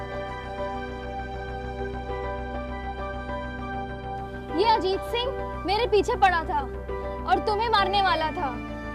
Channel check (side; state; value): both; identical; correlation 1.00